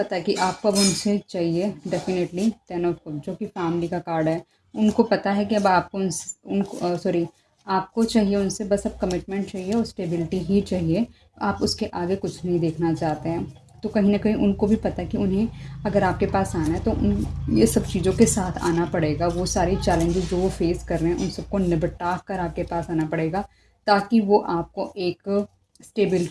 है कि आपको अब उनसे चाहिए डेफिनेटली 10 ऑफ कप जो कि फैमिली का कार्ड है। उनको पता है कि अब आपको उनको सॉरी, आपको चाहिए उनसे बस अब कमिटमेंट चाहिए और स्टेबिलिटी ही चाहिए। आप उसके आगे कुछ नहीं देखना चाहते हैं। तो कहीं न कहीं उनको भी पता है कि उन्हें अगर आपके पास आना है तो उन ये सब चीज़ों के साथ आना पड़ेगा। वो सारी चैलेंजेस जो वो फेस कर रहे हैं उन सबको निपटा कर आपके पास आना पड़ेगा, ताकि वो आपको एक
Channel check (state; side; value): identical; both; correlation 1.00